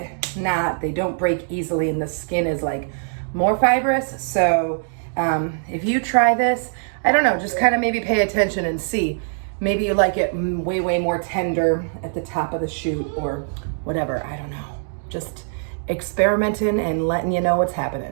not, they don't break easily and the skin is like more fibrous. So if you try this, I don't know, just kind of maybe pay attention and see. Maybe you like it way, way more tender at the top of the shoot or whatever, I don't know. Just experimenting and letting you know what's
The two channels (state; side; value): silent; left; digital silence